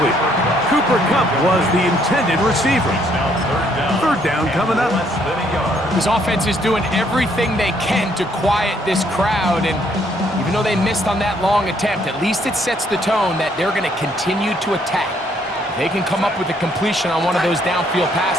Cooper Kupp was the intended receiver. Third down coming up. This offense is doing everything they can to quiet this crowd, and you Even though they missed on that long attempt, at least it sets the tone that they're going to continue to attack. If they can come up with a completion on one of those downfield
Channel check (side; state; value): both; normal; correlation 0.68